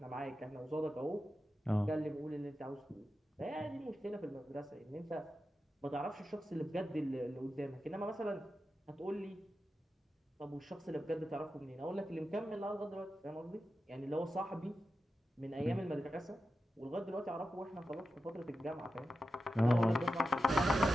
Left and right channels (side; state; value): both; normal; correlation 0.91